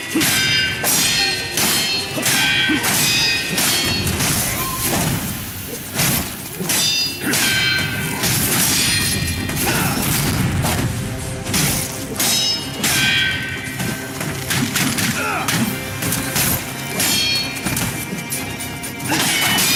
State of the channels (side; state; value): both; identical; correlation 1.00